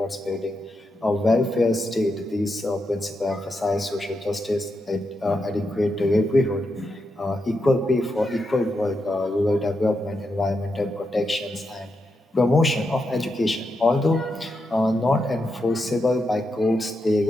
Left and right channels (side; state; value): both; normal; correlation 0.85